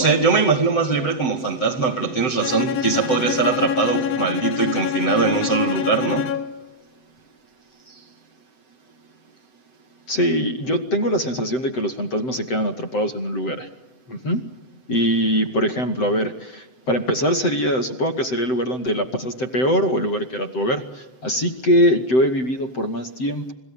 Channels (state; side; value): late; right; 7.8 ms